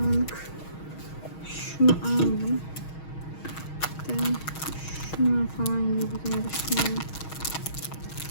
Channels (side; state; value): right; late; 6.3 ms